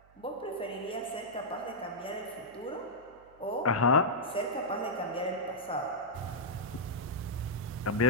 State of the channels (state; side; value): noise; right; hum, 28 dB below the sound